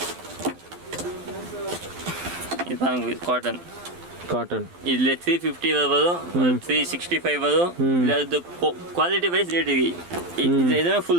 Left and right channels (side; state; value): left; late; 12 ms